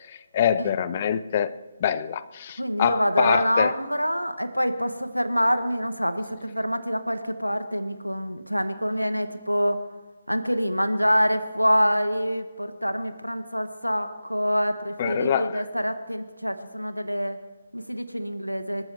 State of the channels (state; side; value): inverted; both; correlation -0.90